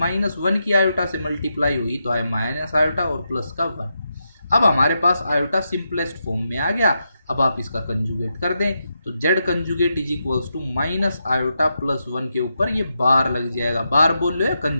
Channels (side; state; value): both; inverted; correlation -0.85